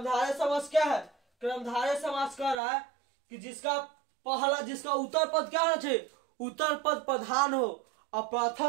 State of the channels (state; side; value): drops out; left; at 2.6 s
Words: समास क्या है, कर्मधारय समास कह रहा है कि जिसका उत्तर पद क्या होना चाहिए, उत्तर पद प्रधान हो, और